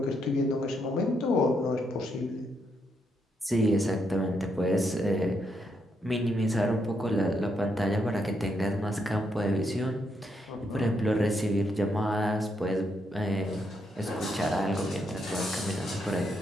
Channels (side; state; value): both; normal; correlation 0.78